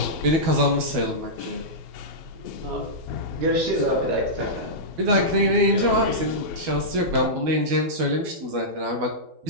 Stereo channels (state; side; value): late; left; 12 ms